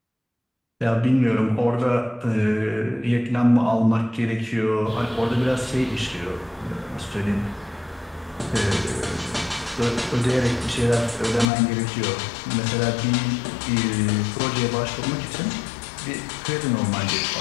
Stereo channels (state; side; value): drops out; right; at 11.5 s